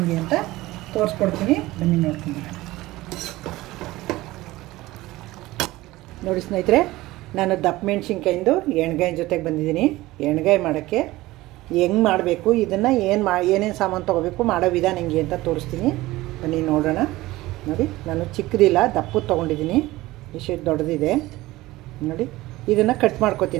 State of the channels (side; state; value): left; quieter; 18.3 dB